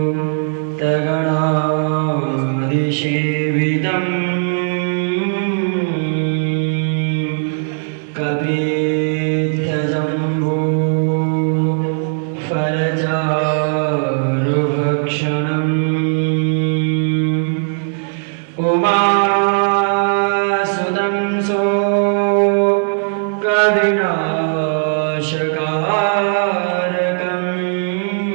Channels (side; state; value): left; silent; 56 dB below the other